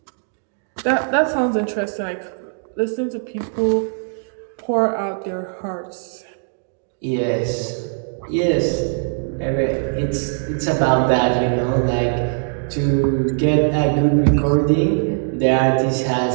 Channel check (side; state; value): left; silent; 65 dB below the other